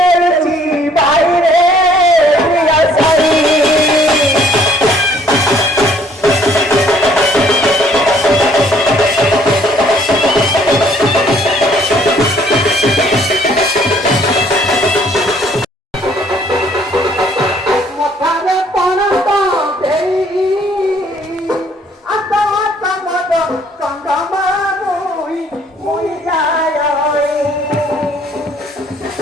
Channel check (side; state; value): both; normal; correlation 0.61